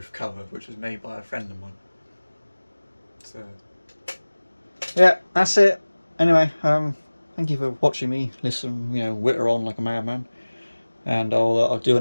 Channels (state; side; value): inverted; both; correlation -1.00